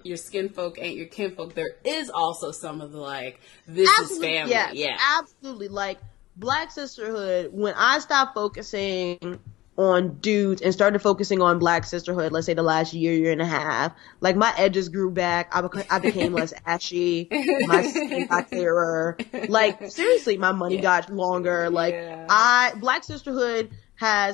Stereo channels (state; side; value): quieter; right; 17.6 dB